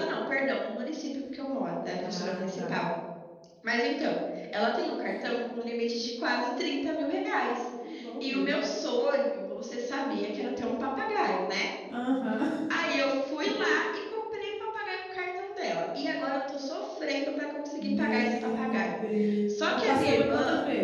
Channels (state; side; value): identical; both; correlation 1.00